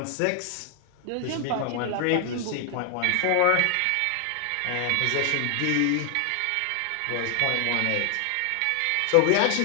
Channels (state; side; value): different; both; correlation 0.00